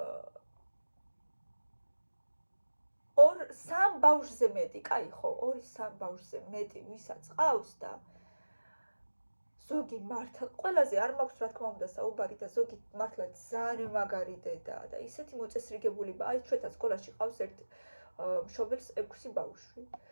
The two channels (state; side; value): inverted; both; correlation -1.00